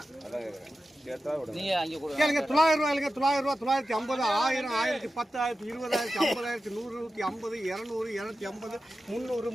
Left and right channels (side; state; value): both; normal; correlation 0.93